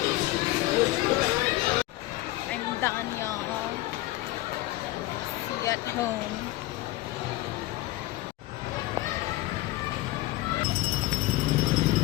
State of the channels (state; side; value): quieter; right; 18.0 dB